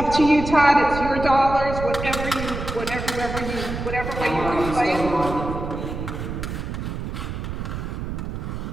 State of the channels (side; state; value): right; noise; rumble, 6 dB below the sound